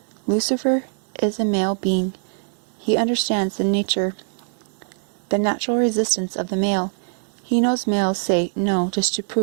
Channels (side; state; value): left; silent; 64 dB below the other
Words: Lucifer is a male being. He understands the natural resistance of the male. He knows males say no just to